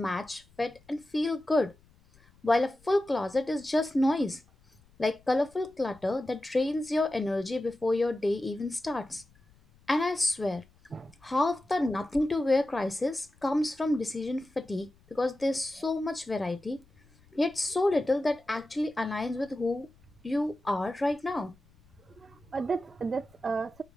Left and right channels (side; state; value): left; noise; rumble, 29 dB below the sound